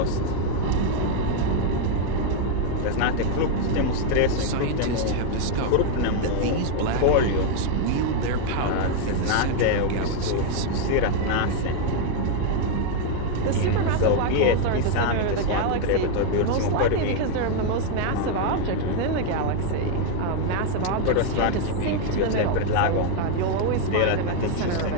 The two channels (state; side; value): different; both; correlation 0.00